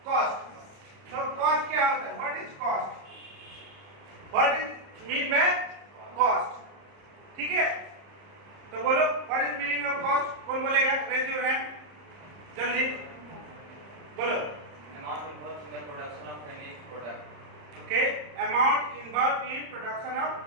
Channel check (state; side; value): late; left; 30 ms